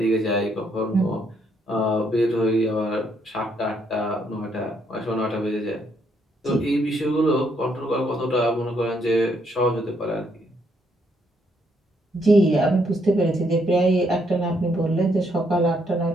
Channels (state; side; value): normal; both; correlation 0.73